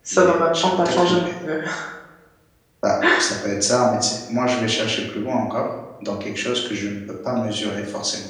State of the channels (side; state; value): both; identical; correlation 1.00